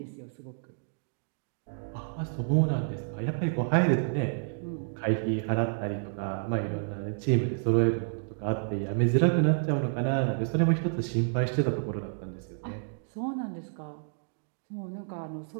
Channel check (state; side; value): silent; left; digital silence